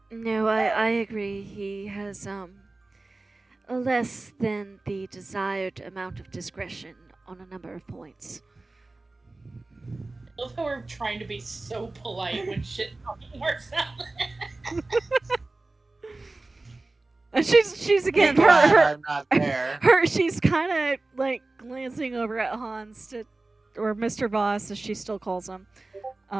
No, I agree. He has less than the desired amount of discretion on a number of points. love how we're trying to be so polite when shit fucking works out. And she's again Be glad her I'm not there. she's kind of like glancing over at Hans or Mr. Voss as she still calls him,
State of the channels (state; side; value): quieter; left; 3.1 dB